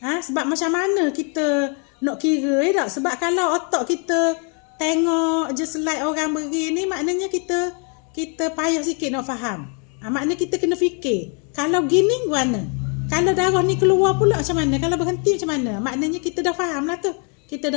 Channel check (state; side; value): quieter; right; 38.6 dB